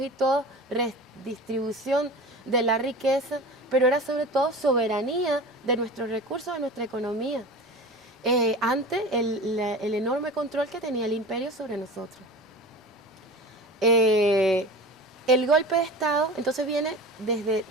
y todas, redistribución de la riqueza, pero era sobre todo soberanía de nuestros recursos, de nuestra economía, ante el enorme control que tenía el imperio sobre nosotros. El golpe de Estado entonces viene desde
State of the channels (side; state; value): both; normal; correlation 0.34